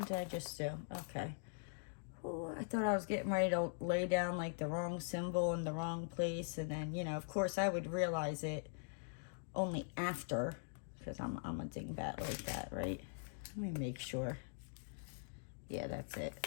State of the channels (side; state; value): right; silent; digital silence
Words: did I just do? Okay. Ooh, I thought I was getting ready to lay down like the wrong symbol in the wrong place. And then, you know, of course I would realize it only after. Because I'm a dingbat like that, right? Let me make sure. Yeah, that's